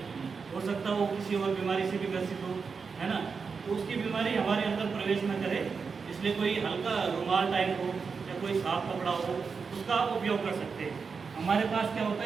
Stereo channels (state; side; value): quieter; left; 5.3 dB